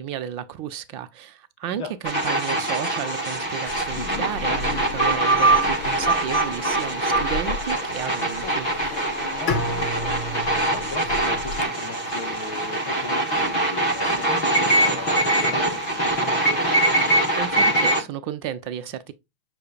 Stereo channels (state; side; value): late; right; 6.1 ms